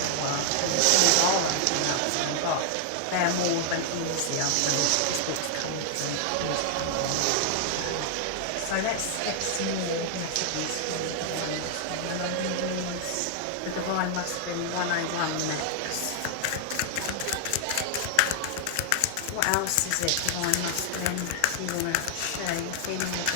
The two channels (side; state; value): both; different; correlation 0.00